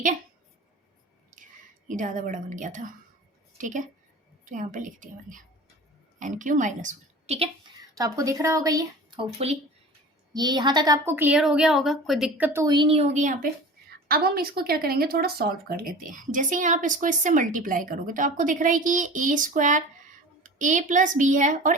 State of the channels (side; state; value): both; normal; correlation 0.38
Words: है। ये ज़्यादा बड़ा बन गया था, ठीक है, तो यहाँ पे लिख दिया मैंने एन क्यूब माइनस वन, ठीक है। तो आपको दिख रहा होगा ये, होपफुली ये यहाँ तक आपको क्लियर हो गया होगा, कोई दिक्कत तो हुई नहीं होगी यहाँ पे। अब हम इसको क्या करेंगे, थोड़ा सॉल्व कर लेते हैं। जैसे ही आप इसको इससे मल्टीप्लाई करोगे तो आपको दिख रहा है कि ये ए स्क्वायर ए प्लस बी है और